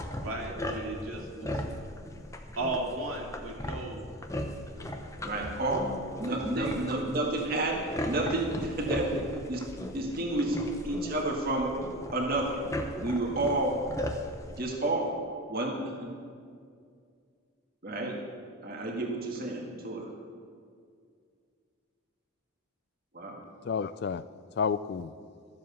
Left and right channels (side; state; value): both; normal; correlation 0.22